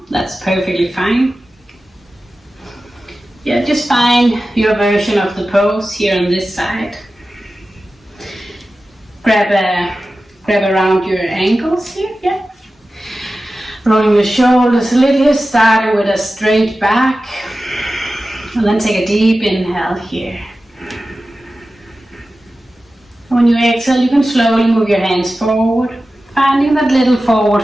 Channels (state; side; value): normal; both; correlation 0.94